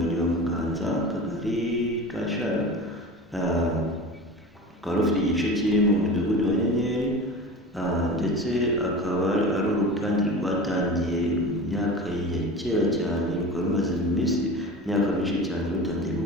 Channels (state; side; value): normal; both; correlation 0.33